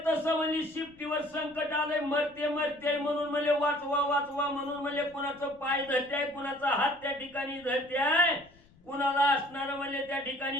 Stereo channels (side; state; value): left; noise; rumble, 28 dB below the sound